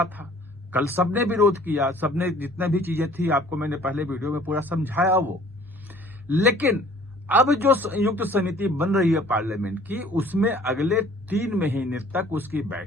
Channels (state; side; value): normal; both; correlation 0.53